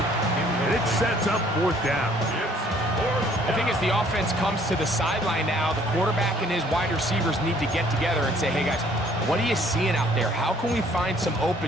And it sets up fourth down. I think as the offense comes to the sideline now, the quarterback and his wide receivers need to get together and say, hey, guys, what are you seeing out there? How can we find some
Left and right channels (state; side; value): normal; both; correlation 0.60